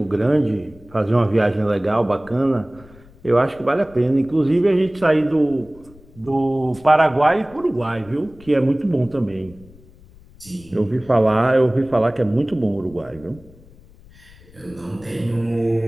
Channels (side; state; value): left; noise; rumble, 24 dB below the sound